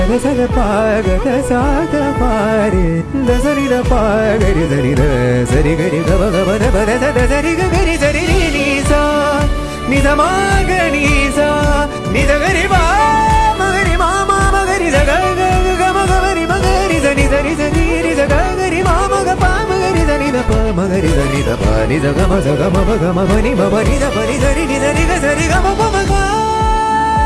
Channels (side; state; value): both; identical; correlation 1.00